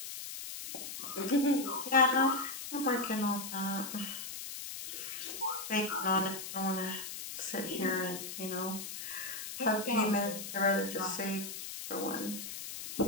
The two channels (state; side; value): noise; left; hiss, 8 dB below the sound